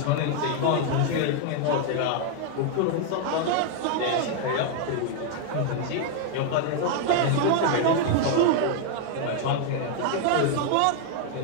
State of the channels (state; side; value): different; both; correlation 0.00